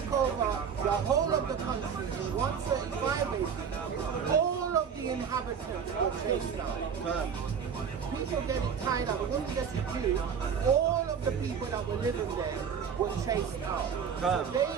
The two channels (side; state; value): left; quieter; 7.0 dB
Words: over the whole of the country in 135 AD, all of the inhabitants were chased out. People getting tied up, when we get to Jews, all of the people that were living there were chased out. So they